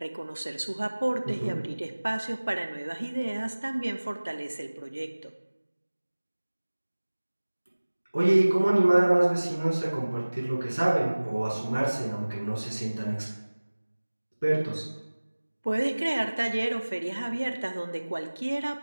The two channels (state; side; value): inverted; both; correlation -1.00